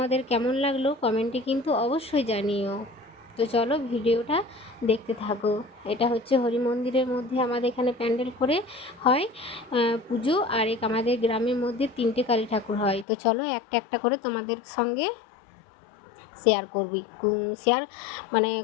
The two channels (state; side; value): drops out; right; at 13.1 s